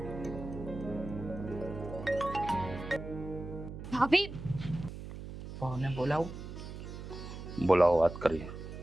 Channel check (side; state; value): right; noise; hum, 10 dB below the sound